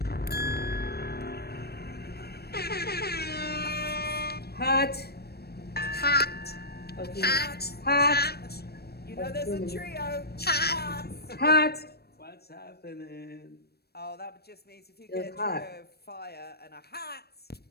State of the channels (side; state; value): right; late; 0.47 ms